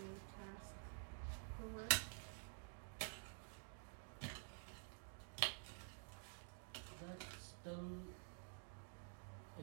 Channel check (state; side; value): silent; left; digital silence